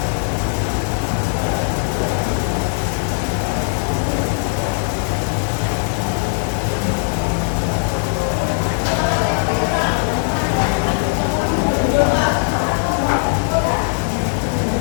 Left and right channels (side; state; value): right; silent; 66 dB below the other